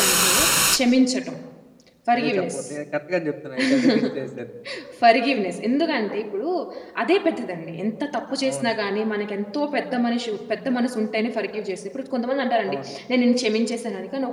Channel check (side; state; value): both; identical; correlation 1.00